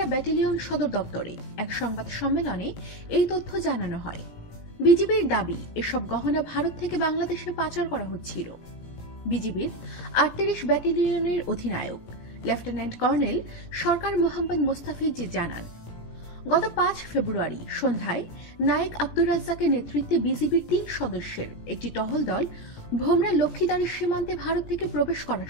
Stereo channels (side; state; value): right; late; 17 ms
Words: ব্যাটালিয়ন সদর দপ্তরে এক সংবাদ সম্মেলনে এই তথ্য জানানো হয়। বিজিবির দাবি, এসব গহনা ভারত থেকে বাংলাদেশে পাচার করা হচ্ছিল। বিজিবির 38 ব্যাটালিয়নের অধিনায়ক লেফটেন্যান্ট কর্নেল সরকার মোহাম্মদ মোস্তাফিজ জানান, গত 5 ফেব্রুয়ারি সন্ধ্যায় নায়েক আব্দুর রাজ্জাকের নেতৃত্বে বিজিবির 3 সদস্যের একটি টহল দল ভোমরা লক্ষ্মীদারি সীমান্তে ভারত থেকে প্রবেশ করার